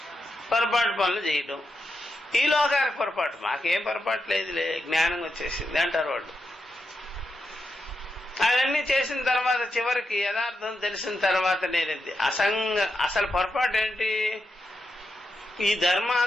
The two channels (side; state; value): both; normal; correlation 0.86